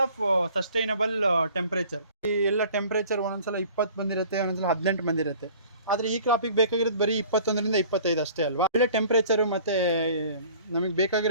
of sustainable temperature. ಈ ಎಲ್ಲ ಟೆಂಪರೇಚರ್ ಒಂದೊಂದ್ಸಲ 20 ಬಂದಿರುತ್ತೆ, ಒಂದೊಂದ್ಸಲ 18 ಬಂದಿರುತ್ತೆ. ಆದರೆ ಈ ಕ್ರಾಪಿಗೆ ಬೇಕಾಗಿರೋದು ಬರೀ 21ರಿಂದ 25 ಅಷ್ಟೇ ಅಲ್ವಾ. ಒಳ್ಳೆ ಟೆಂಪರೇಚರು ಮತ್ತು ನಮಗೆ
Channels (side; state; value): both; inverted; correlation -0.50